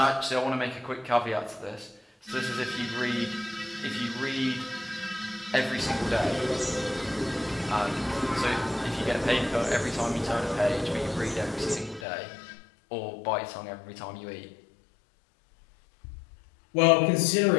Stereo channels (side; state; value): right; drops out; at 12.1 s